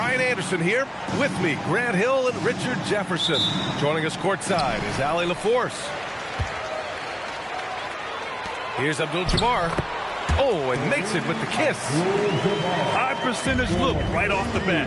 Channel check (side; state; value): both; identical; correlation 1.00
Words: Anderson here. With me, Grant Hill and Richard Jefferson. Joining us courtside is Allie LaForce. Here's Abdul-Jabbar. Oh, and makes it with the kiss. High percentage look right off the